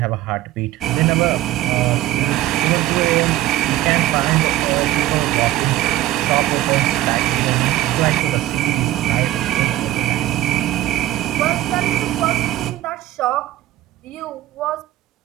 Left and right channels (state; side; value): quieter; left; 15.0 dB